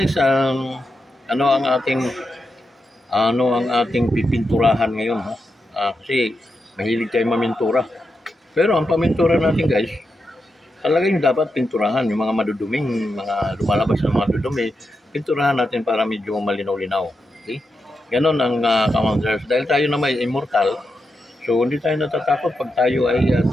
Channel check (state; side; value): normal; both; correlation 0.86